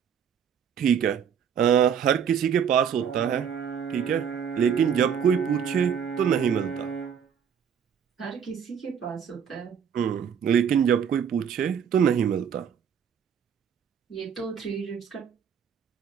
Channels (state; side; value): quieter; left; 7.8 dB